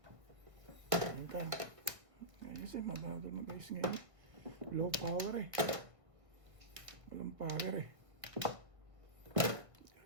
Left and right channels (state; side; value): late; left; 1.4 ms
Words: Ayun tayo. Ayos eh, magandang na guys ngayon. Low power eh. Walang power eh.